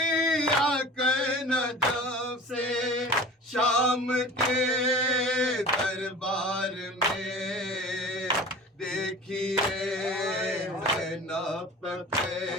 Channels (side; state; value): both; normal; correlation 0.39